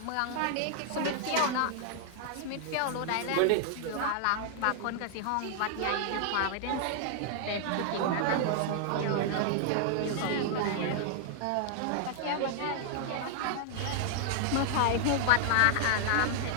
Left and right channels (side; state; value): both; different; correlation 0.00